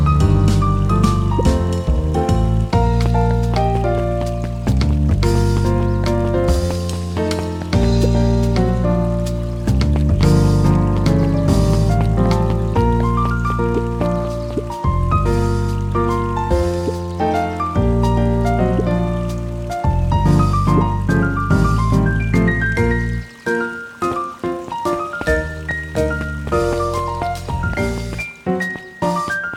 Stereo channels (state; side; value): identical; both; correlation 1.00